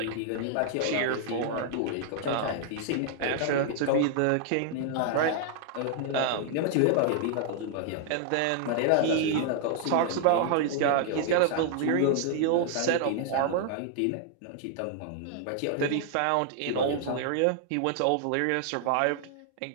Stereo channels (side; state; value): both; different; correlation 0.00